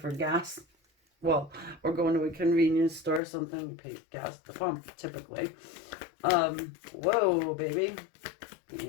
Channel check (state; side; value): drops out; right; at 3.2 s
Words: gas. Well, or going to a convenience store or something, you pay gas at the pump, typically. Whoa, baby.